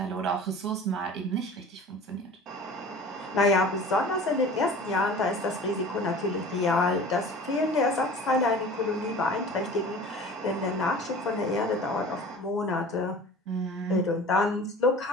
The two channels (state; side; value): normal; both; correlation 0.41